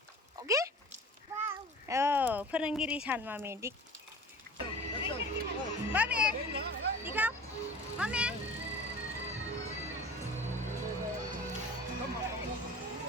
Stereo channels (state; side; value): normal; both; correlation 0.40